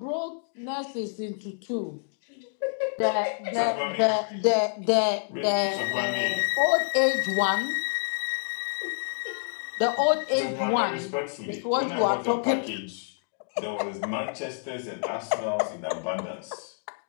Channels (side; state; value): right; silent; digital silence